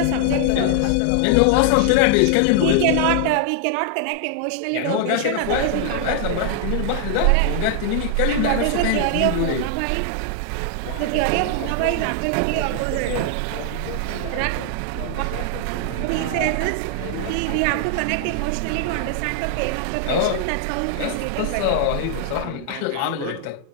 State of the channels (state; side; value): different; both; correlation 0.00